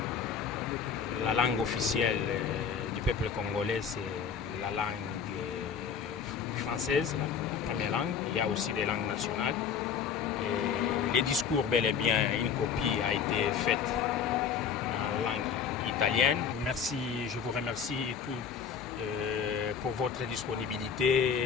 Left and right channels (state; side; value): quieter; right; 7.0 dB